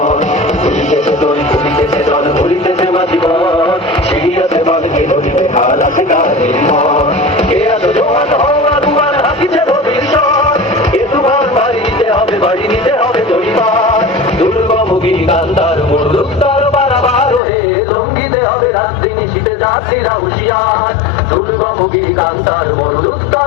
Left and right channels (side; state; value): right; drops out; at 17.4 s